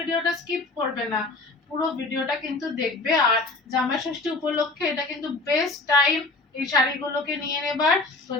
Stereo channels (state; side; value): quieter; right; 3.2 dB